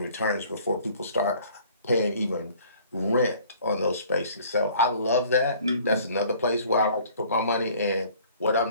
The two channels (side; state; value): both; inverted; correlation -0.54